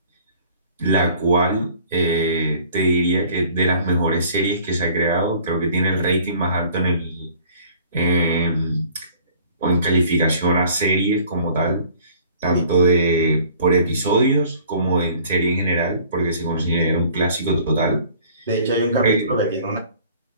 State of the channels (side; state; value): both; inverted; correlation -0.52